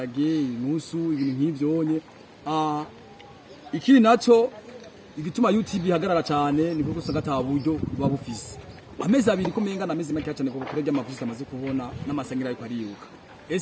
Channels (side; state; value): both; identical; correlation 1.00